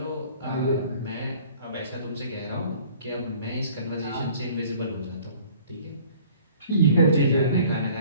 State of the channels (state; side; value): inverted; both; correlation -0.53